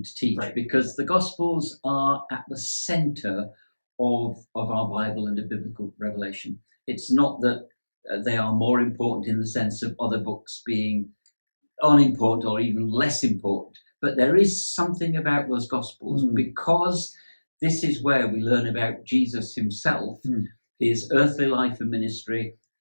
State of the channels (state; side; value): inverted; both; correlation -1.00